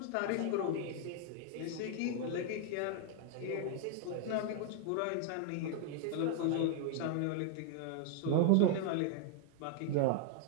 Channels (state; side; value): different; both; correlation 0.00